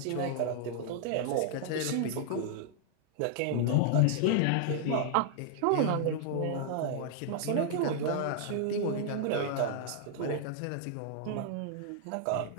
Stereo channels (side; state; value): both; different; correlation 0.00